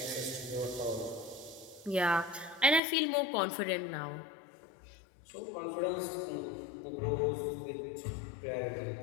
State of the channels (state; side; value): drops out; right; at 2.8 s